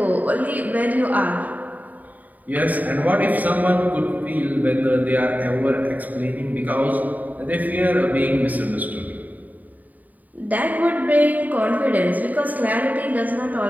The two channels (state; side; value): late; left; 0.078 ms